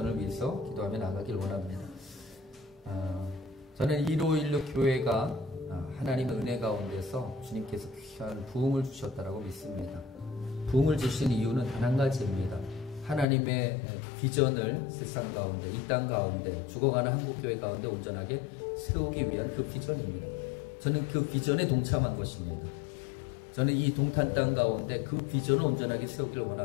위해서 기도하며 나가길 원합니다. 저는 1516 교회가 하나님의 은혜 가운데서 주님께서 귀한 부흥을 주셨다고 믿습니다. 부흥을 주신 이유는 단 한 가지입니다. 하나님의 비전을 세상 가운데, 이 땅 가운데, 죽어가는 한국교회 가운데 온전하게 세우기 위한 그 비전입니다. 저는 그 비전에 동참한 것입니다. 저는 이 동탄 땅 가운데 그 비전을 온전하게 세우기를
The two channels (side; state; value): right; drops out; at 13.2 s